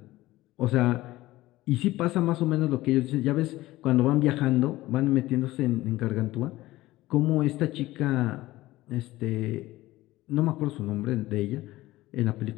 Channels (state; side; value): quieter; right; 17.5 dB